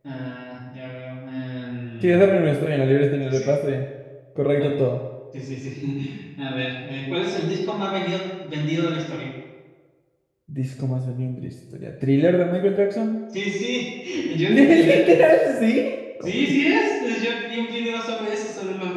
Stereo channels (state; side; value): identical; both; correlation 1.00